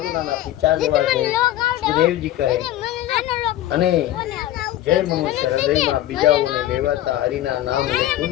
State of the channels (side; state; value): right; quieter; 13.6 dB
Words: પીછા જેવા છે. સુખદેવજી કહે અને જે મનુષ્ય હૃદયમાં બીજાઓને લેવાતા હરિના નામ લેતું